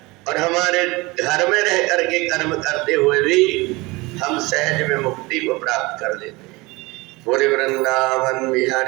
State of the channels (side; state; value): left; quieter; 23.3 dB